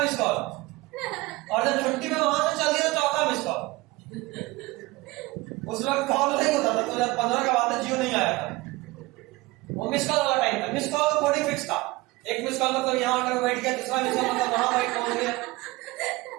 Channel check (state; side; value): quieter; left; 21.4 dB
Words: मिस कॉल, और जब छुट्टी में वहां से चल दिया 4था मिस कॉल। उस वक्त कॉल नहीं होता था, 2015 का बात है, जियो नहीं आया था, वो मिस कॉल वाला टाइम था। मिस कॉल का कोडिंग फिक्स था, 1 मिस कॉल मतलब यहाँ आकर बैठ गया, 2रा मिस कॉल मतलब वहां बैठ पहुंच गया,